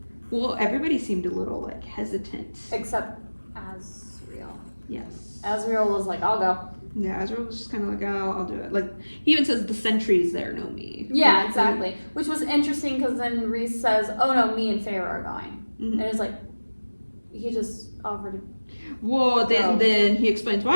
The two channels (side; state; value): both; inverted; correlation -1.00